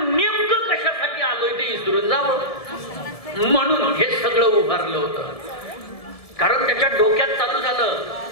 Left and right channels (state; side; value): late; right; 1.7 ms